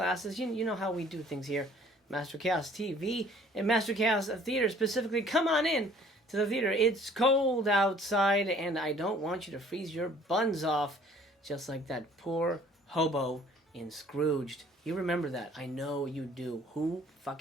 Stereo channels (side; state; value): both; normal; correlation 0.55